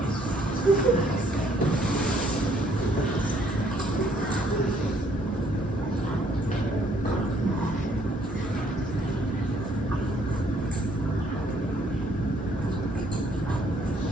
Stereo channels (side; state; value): both; normal; correlation 0.65